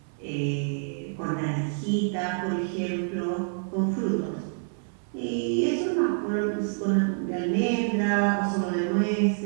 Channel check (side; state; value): left; silent; 60 dB below the other